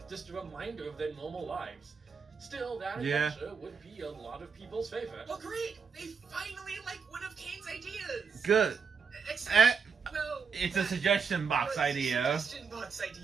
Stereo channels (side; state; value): left; quieter; 5.8 dB